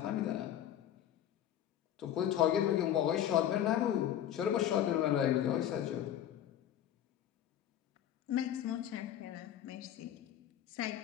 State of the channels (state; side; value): quieter; right; 10.9 dB